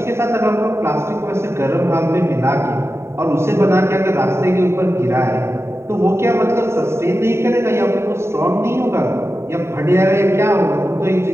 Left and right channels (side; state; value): left; late; 0.13 ms